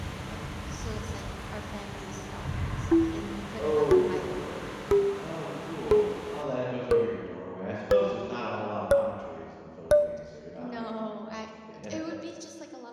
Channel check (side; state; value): both; identical; correlation 1.00